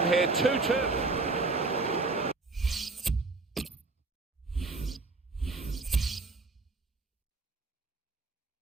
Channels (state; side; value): quieter; left; 3.6 dB